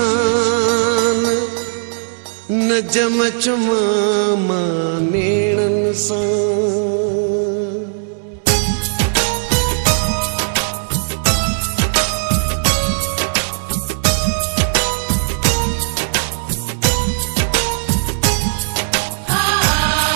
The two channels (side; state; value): left; silent; 66 dB below the other